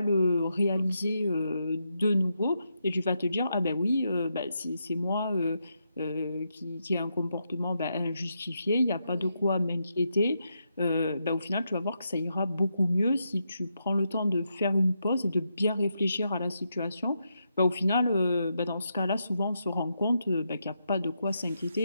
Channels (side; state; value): both; inverted; correlation -0.82